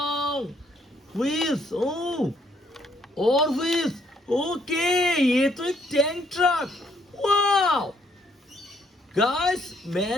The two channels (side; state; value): both; normal; correlation 0.69